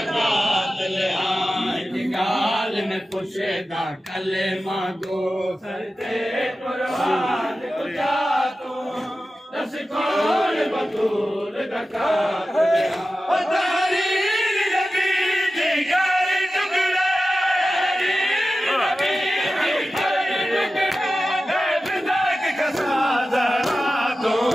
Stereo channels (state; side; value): normal; both; correlation 0.94